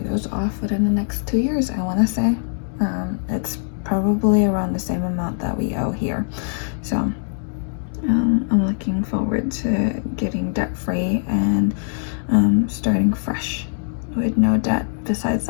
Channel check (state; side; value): silent; right; digital silence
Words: those off within the next 2 years. I want to say it's probably around the same amount that we owe here, so I'm looking forward to getting debt free and starting fresh with no debt besides